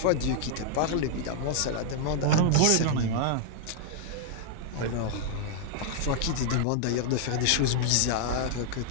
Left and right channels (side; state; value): both; different; correlation -0.01